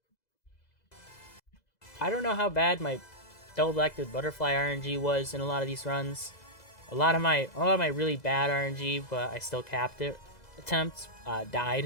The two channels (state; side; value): late; right; 2.0 ms